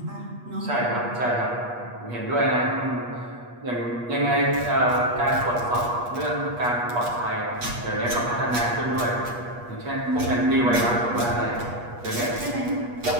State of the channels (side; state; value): left; late; 8.3 ms